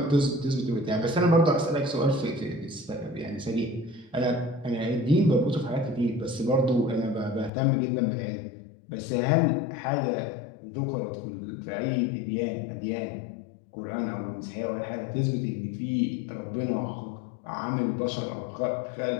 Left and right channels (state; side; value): drops out; right; at 7.5 s